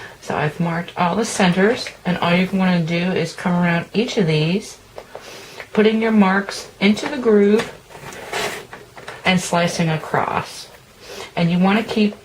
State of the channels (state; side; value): identical; both; correlation 1.00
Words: So I've marked all the centers, and all you want to do is come around each of these, putting your marks into the groove and slicing across. And you want to keep